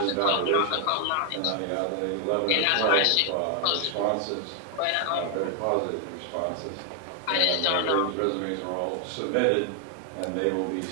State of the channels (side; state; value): both; different; correlation 0.00